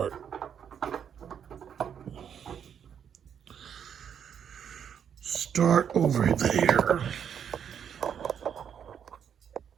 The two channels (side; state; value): left; quieter; 8.2 dB